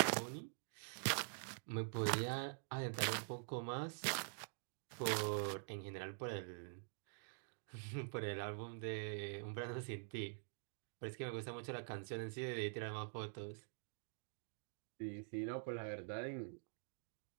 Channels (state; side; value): silent; left; digital silence